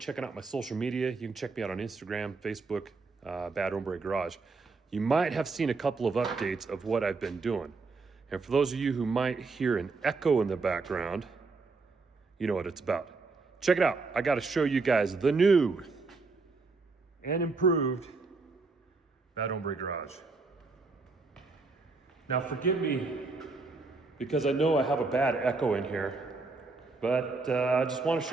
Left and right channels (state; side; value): quieter; left; 4.0 dB